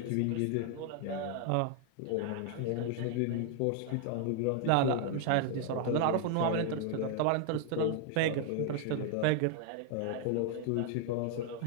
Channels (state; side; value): different; both; correlation 0.00